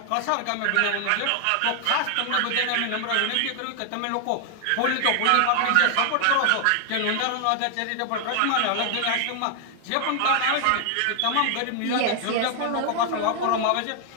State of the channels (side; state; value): both; different; correlation 0.00